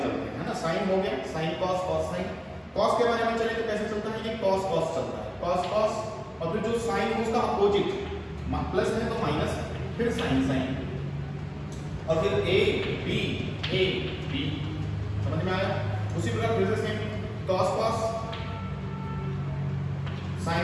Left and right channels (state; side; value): identical; both; correlation 1.00